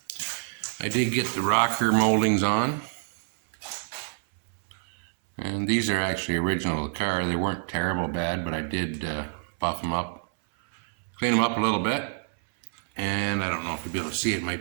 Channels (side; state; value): left; silent; 60 dB below the other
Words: I did get the rocker moldings on. And these are actually original of the car. They weren't terrible bad, but I did buff them up, clean them up a little bit. And I don't know if you'll be able to see it,